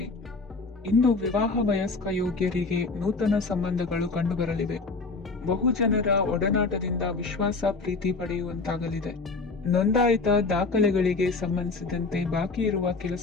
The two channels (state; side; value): quieter; right; 3.9 dB